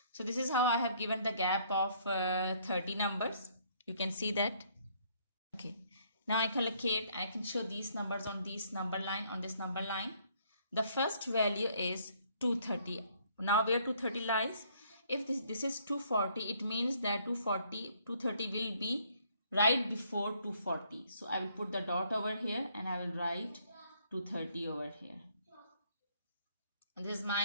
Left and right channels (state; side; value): inverted; both; correlation -0.65